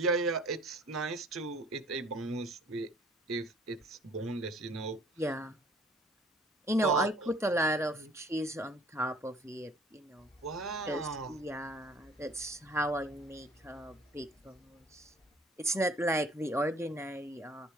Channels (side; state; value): both; normal; correlation 0.53